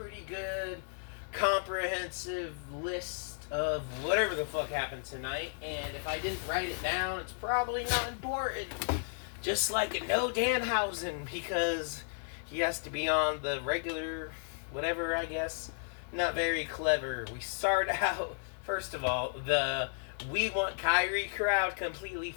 good, comprehensive list of whatever the fuck happened tonight, and if I didn't write it down, it's probably not important. Just like No Danhausen, because he has to be on the regular, whatever, I guess. Not very clever. We start out, first of all, the We Want Kyrie crowd completely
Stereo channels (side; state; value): right; silent; digital silence